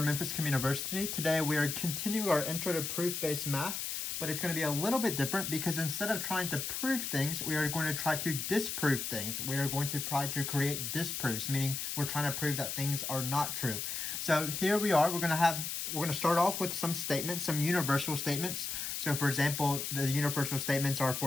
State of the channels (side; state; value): left; noise; hiss, 3 dB below the sound